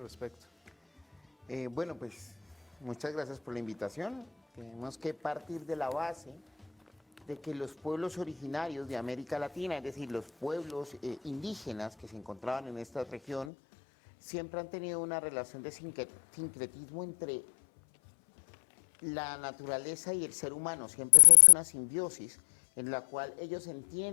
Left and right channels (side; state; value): right; drops out; at 13.5 s